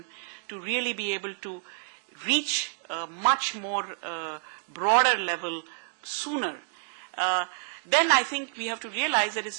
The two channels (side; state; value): left; silent; digital silence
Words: to really be able to reach a much more broader level sooner. Then I think we have to realize that